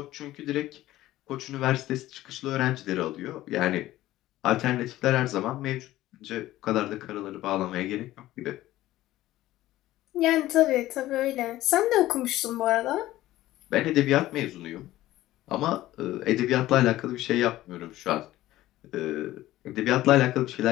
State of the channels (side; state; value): right; quieter; 15.5 dB